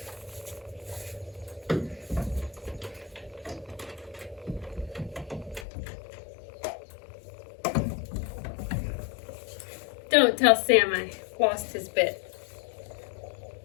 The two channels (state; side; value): drops out; right; at 5.7 s